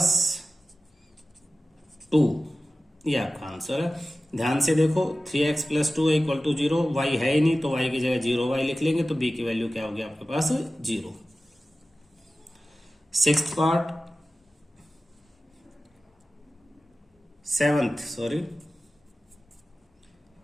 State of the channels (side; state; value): both; normal; correlation 0.95